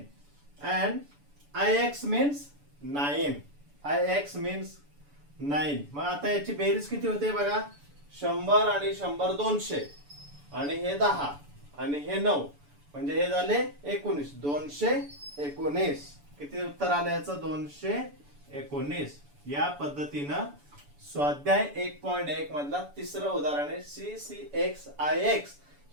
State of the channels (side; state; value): left; late; 7.0 ms